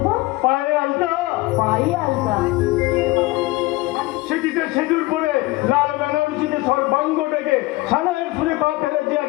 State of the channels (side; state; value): right; quieter; 20.4 dB